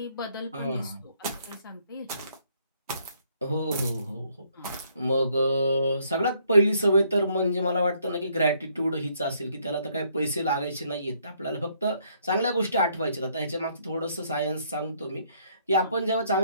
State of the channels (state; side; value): inverted; both; correlation -0.68